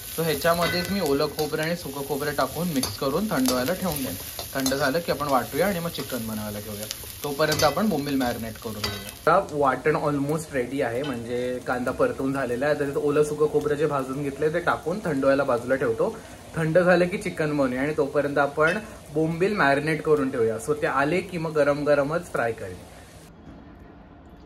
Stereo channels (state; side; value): identical; both; correlation 1.00